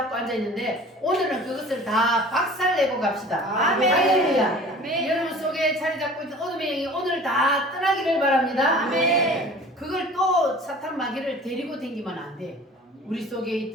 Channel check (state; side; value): normal; both; correlation 0.44